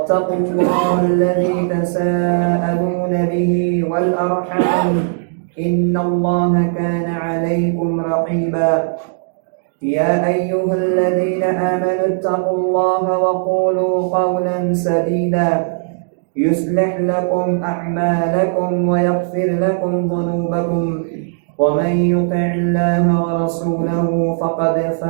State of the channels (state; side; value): silent; left; digital silence